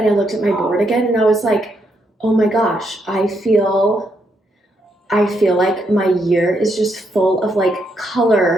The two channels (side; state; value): both; normal; correlation 0.77